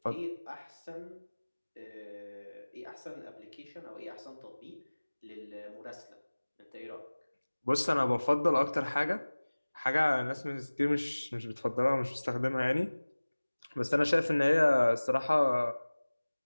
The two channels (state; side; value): inverted; both; correlation -1.00